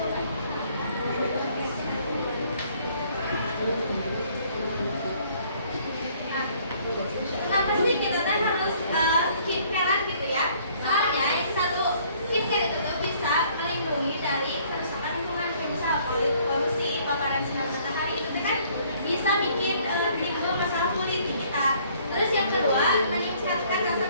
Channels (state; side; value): inverted; both; correlation -0.61